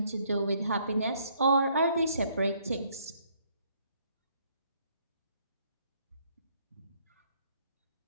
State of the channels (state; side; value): inverted; both; correlation -0.67